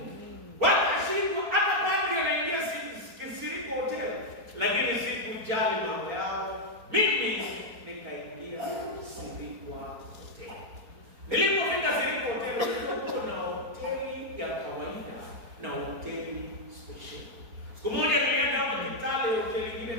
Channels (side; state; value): left; late; 4.4 ms